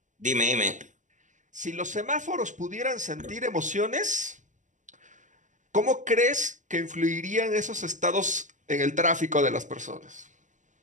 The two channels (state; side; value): late; left; 0.36 ms